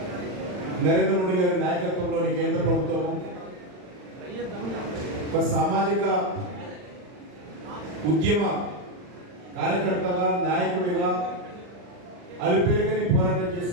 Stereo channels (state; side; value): late; left; 39 ms